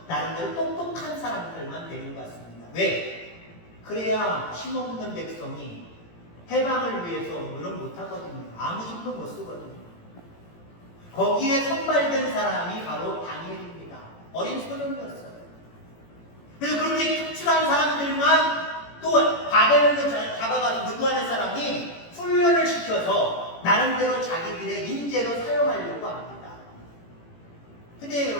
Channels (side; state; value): right; late; 18 ms